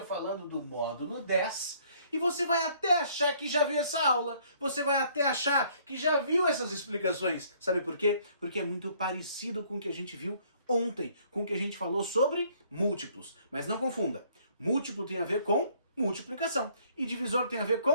falando do módulo 10. E você vai até achar que já viu essa aula. Você vai até achar que já viu essas explicações. Sabe por quê? Porque é muito parecido com o que a gente viu ontem, com o que a gente falou sobre múltiplos. Mas não confunda. Múltiplo tem a ver com multiplicação. E divisor tem a ver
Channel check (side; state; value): both; inverted; correlation -0.62